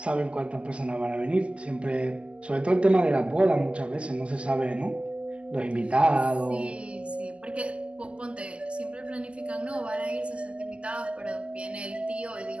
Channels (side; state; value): left; late; 0.055 ms